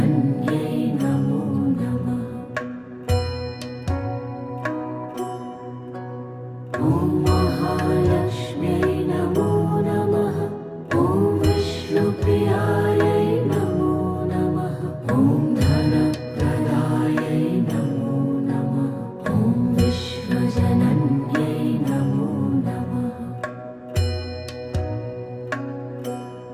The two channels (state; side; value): identical; both; correlation 1.00